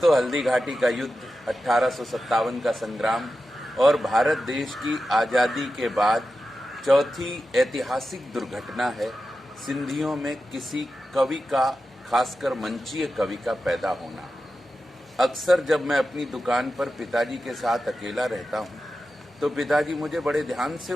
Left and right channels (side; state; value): both; normal; correlation 0.91